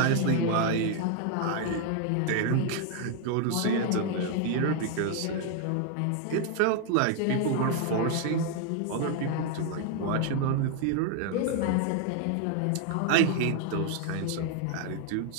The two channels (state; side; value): different; both; correlation 0.00